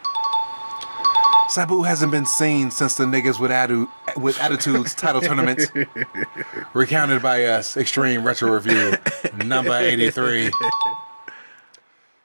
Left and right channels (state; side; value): inverted; both; correlation -1.00